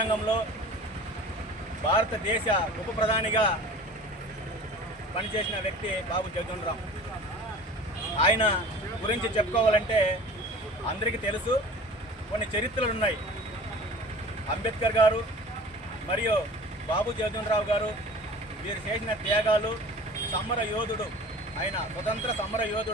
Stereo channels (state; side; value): normal; both; correlation 0.41